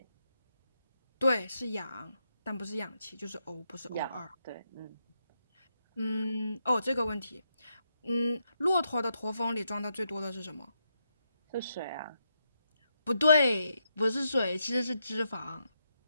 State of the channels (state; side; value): inverted; both; correlation -0.81